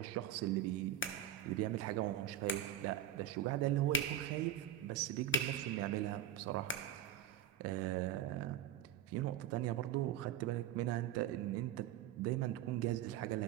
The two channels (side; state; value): left; quieter; 10.0 dB